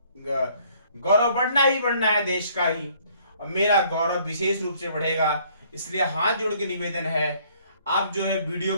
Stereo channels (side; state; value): both; inverted; correlation -0.62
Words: बढ़ना है देश का ही, और मेरा गौरव विशेष रूप से बढ़ेगा। इसलिए हाथ जोड़ के निवेदन है, आप जो है वीडियो